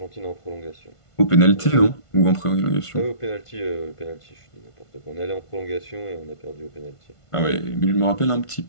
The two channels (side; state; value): right; late; 1.5 ms